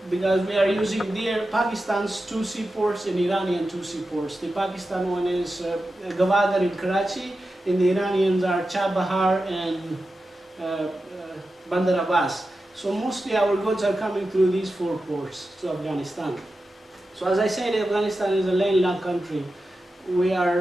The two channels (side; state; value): both; normal; correlation 0.92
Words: because we are using Pakistan's 2 seaports and Iranian 2 seaports. The Pakistan one is Gwadar in Karachi, and the Iranians are Chabahar and Bandar Abbas. So mostly our goods are coming through these 4 ports to Afghanistan. So as I said, Afghanistan is a landlocked country. We